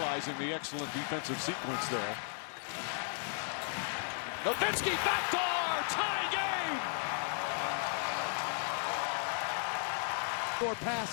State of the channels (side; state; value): right; silent; 54 dB below the other